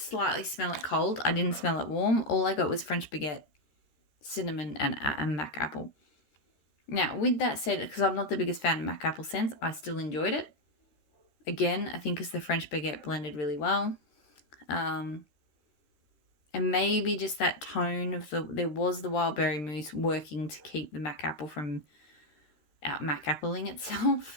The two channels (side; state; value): right; late; 13 ms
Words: smell it cold. I didn't smell it warm. All I got was French baguette, cinnamon, and mac apple. Now, with that said, because I'm not the biggest fan of mac apple scents, I still enjoyed it. Again, I think because the French baguette blended really well. And maybe just that tone of there was the wild berry mousse working to keep the mac apple from out mac appling